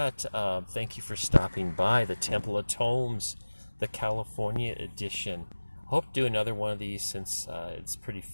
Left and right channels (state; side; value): inverted; both; correlation -1.00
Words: thank you for stopping by the Temple of Tomes, the California edition. Hope to do another one of these since it's pretty